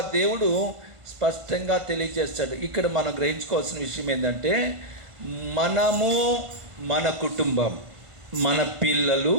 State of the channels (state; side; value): late; left; 1.5 ms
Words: దేవుడు స్పష్టంగా తెలియజేస్తాడు. ఇక్కడ మనం గ్రహించుకోవాల్సిన విషయం ఏంటంటే, మనము, మన కుటుంబం, మన పిల్లలు,